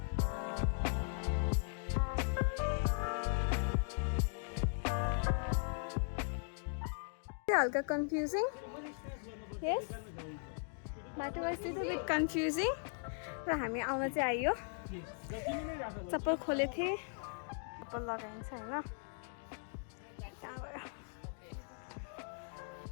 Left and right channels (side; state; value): right; silent; 52 dB below the other